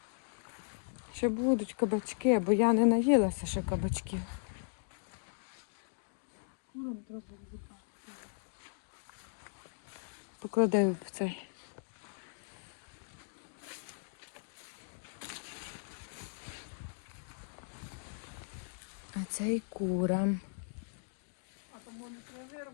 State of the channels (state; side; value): silent; right; digital silence